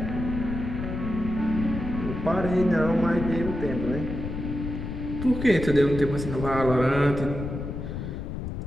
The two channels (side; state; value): left; noise; rumble, 5 dB below the sound